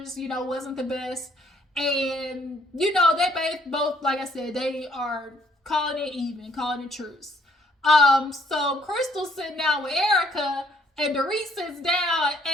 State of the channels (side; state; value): both; normal; correlation 0.65